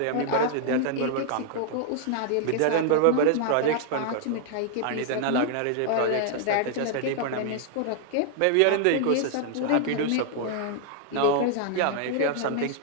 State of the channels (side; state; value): both; different; correlation 0.00